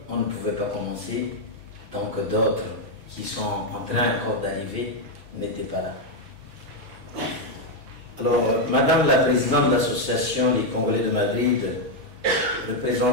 on ne pouvait pas commencer tant que d'autres qui sont en train encore d'arriver n'étaient pas là. Alors, Madame la Présidente de l'Association des Congolais de Madrid,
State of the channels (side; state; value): left; late; 5.9 ms